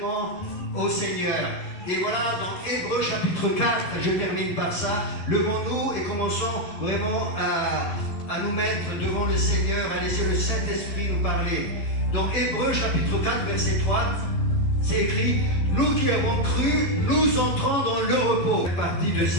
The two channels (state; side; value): late; right; 11 ms